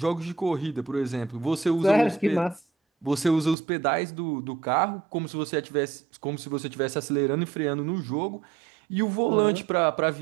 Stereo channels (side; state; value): left; drops out; at 3.6 s